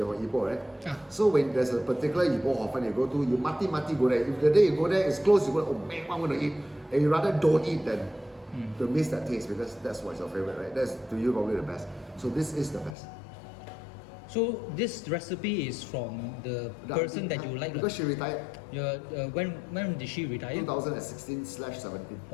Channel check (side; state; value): right; drops out; at 13.0 s